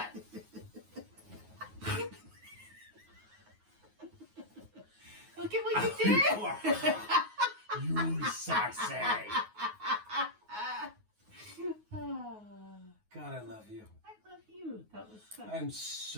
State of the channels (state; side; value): late; left; 9.4 ms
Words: Look at what you did. You sassy. God, I love you. I love you. That was fun. I'm